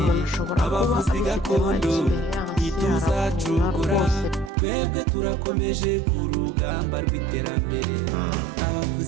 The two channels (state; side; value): drops out; left; at 4.5 s